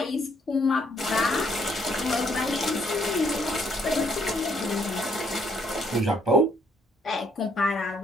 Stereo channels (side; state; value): both; normal; correlation 0.68